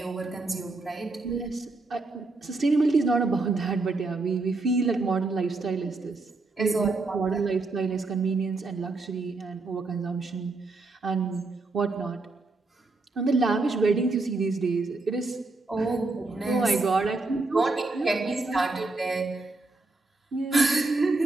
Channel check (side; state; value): left; quieter; 3.4 dB